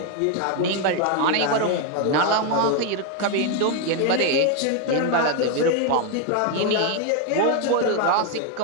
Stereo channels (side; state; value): both; different; correlation 0.01